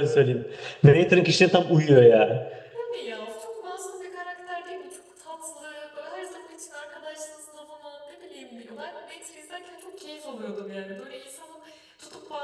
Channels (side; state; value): both; identical; correlation 1.00